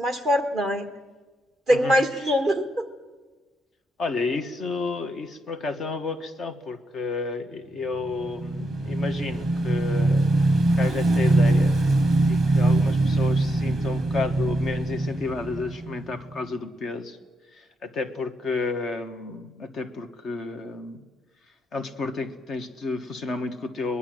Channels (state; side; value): normal; both; correlation 0.81